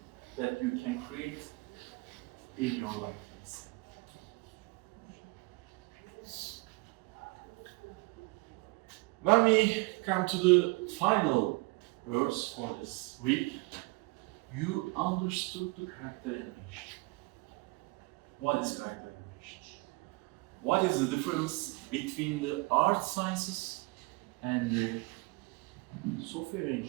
that you can create in your life. When we come to the final verse for this week, you understood the character animation. What is character animation? What is the difference between the art sciences and the software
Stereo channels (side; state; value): left; quieter; 26.0 dB